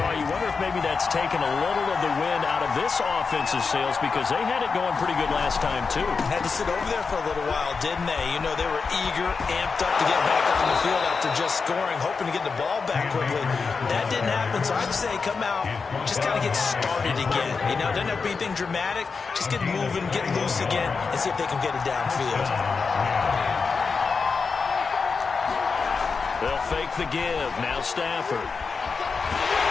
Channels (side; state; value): right; quieter; 5.0 dB